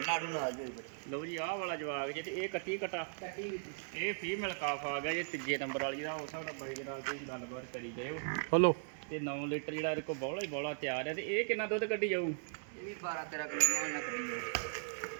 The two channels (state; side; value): silent; left; digital silence